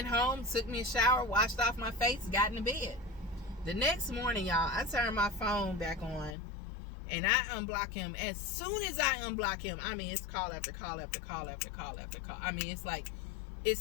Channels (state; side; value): drops out; right; at 6.4 s